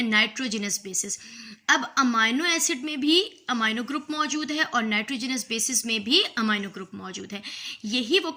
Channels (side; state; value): both; identical; correlation 1.00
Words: नाइट्रोजनस बेसिस। अब अमाइनो एसिड में भी अमाइनो ग्रुप मौजूद है और नाइट्रोजनस बेसिस में भी अमाइनो ग्रुप मौजूद है। यही वो